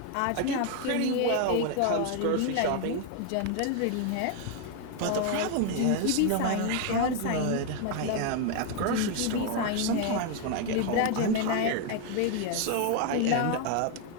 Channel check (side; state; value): both; different; correlation 0.01